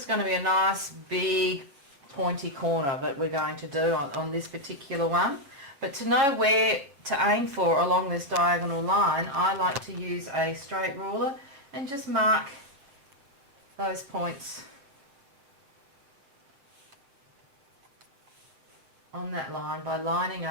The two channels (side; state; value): left; late; 7.2 ms